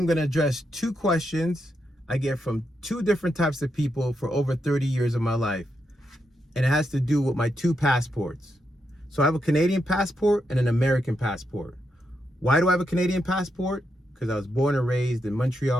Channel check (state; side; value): normal; both; correlation 0.83